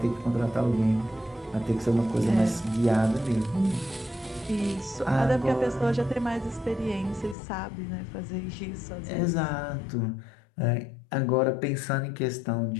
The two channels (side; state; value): right; drops out; at 7.4 s